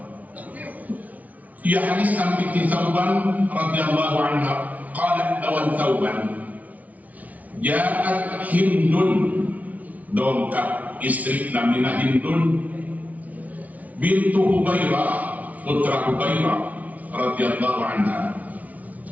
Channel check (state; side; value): late; left; 0.072 ms